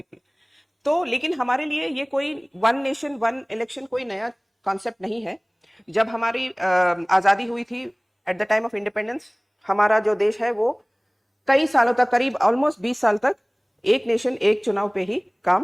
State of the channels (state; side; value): identical; both; correlation 1.00